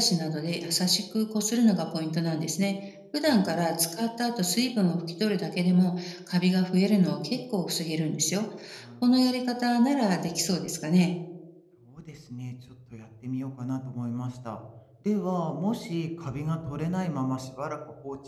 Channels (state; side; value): identical; both; correlation 1.00